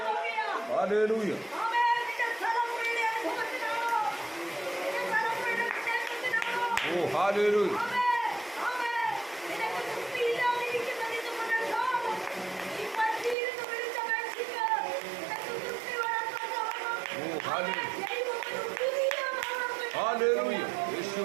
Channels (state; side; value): drops out; left; at 13.4 s